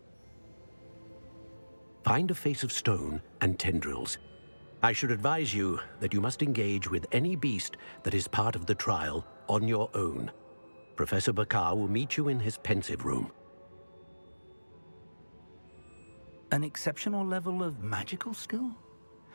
Find a face of stone and tendrils. I should advise you that you must engage with any beast that is part of the trial on your own. Professor Bakar will meet you in his pensive room. An exceptional level of magical skill?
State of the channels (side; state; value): both; inverted; correlation -1.00